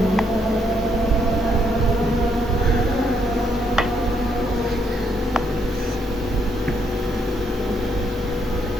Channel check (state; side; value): normal; both; correlation 0.74